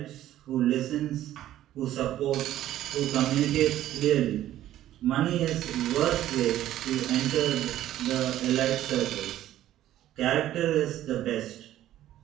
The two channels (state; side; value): quieter; left; 13.1 dB